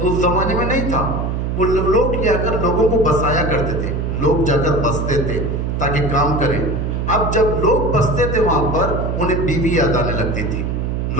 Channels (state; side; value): noise; right; hum, 1 dB below the sound